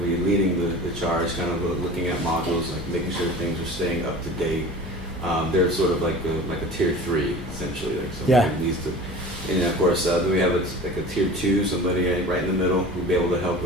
the charge, kind of looking at modules, like making sure things are staying up to date. They're sort of like a tier 3, essentially. Like somebody needs to. And then of course, then we have a tier 2, somebody right in the middle who'll be able to help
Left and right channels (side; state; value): both; normal; correlation 0.38